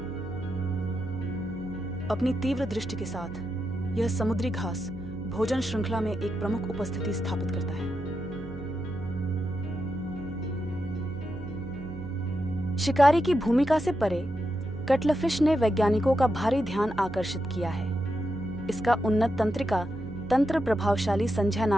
अपनी तीव्र दृष्टि के साथ यह समुद्री घास भोजन श्रृंखला में एक प्रमुख उपस्थिति स्थापित करता है। शिकारी की भूमिका से परे कटलफिश ने वैज्ञानिकों का भारी ध्यान आकर्षित किया है। इसका उन्नत तंत्रिका तंत्र प्रभावशाली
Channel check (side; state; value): right; noise; hum, 13 dB below the sound